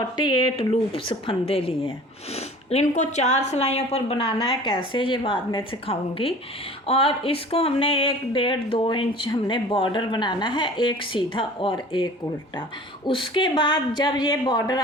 लूप्स फंदे लिए हैं। इनको 4 सिलाइयों पर बनाना है, कैसे ये बाद में सिखाऊंगी। और इसको हमने 1.5-2 इंच हमने बॉर्डर बनाना है, एक सीधा और एक उल्टा। उसके बाद जब ये बॉर्डर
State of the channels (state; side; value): normal; both; correlation 0.44